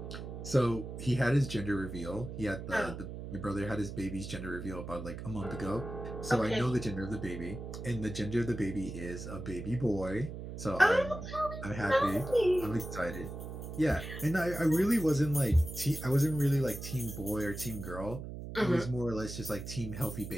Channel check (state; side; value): noise; right; hum, 9 dB below the sound